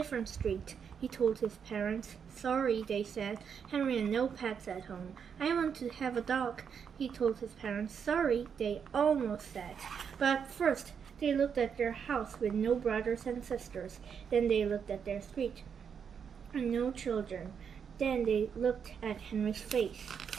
street," he told his parents. "Sorry," they said. Henry had no pets at home. "I want to have a dog," he told his parents. "Sorry," they almost said. But first, they looked at their house with no brothers and sisters. Then they looked at their street and no children. Then they looked at Henry's face.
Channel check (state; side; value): quieter; left; 7.1 dB